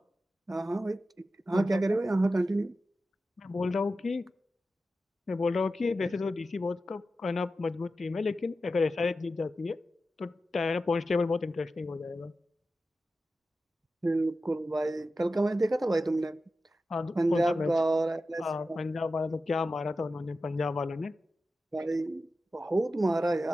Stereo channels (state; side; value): normal; both; correlation 0.92